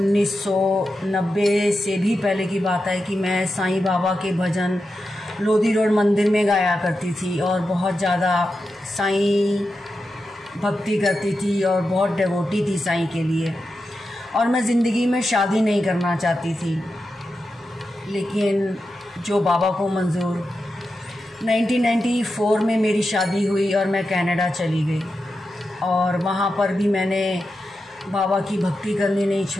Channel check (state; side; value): normal; both; correlation 0.89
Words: से भी पहले की बात है कि मैं साईं बाबा के भजन लोधी रोड मंदिर में गाया करती थी और बहुत ज़्यादा साईं भक्ति करती थी और बहुत डिवोटी थी साईं के लिए। और मैं ज़िंदगी में शादी नहीं करना चाहती थी, लेकिन जो बाबा को मंजूर। 1994 में मेरी शादी हुई और मैं कनाडा चली गई और वहाँ पर भी मैंने बाबा की भक्ति करनी नहीं